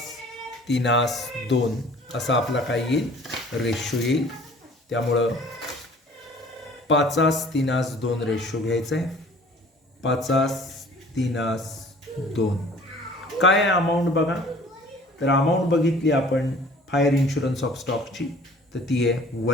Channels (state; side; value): normal; both; correlation 0.50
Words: 3 2 असा आपला काय येईल? रेशो येईल. त्यामुळं 5 3 2 रेशो घ्यायचा आहे. 5 3 2 काय आहे अमाऊंट बघा. तर अमाऊंट बघितली आपण फायर इन्शुरन्स ऑफ स्टॉकची तर ती आहे